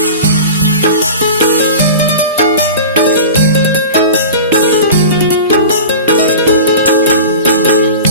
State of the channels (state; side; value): inverted; both; correlation -0.34